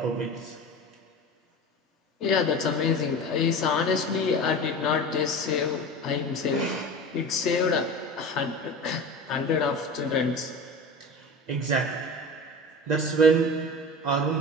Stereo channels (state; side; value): normal; both; correlation 0.32